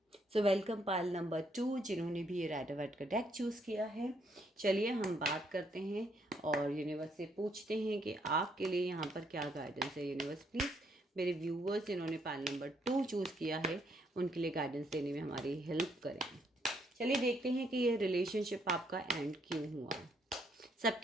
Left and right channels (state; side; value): normal; both; correlation 0.72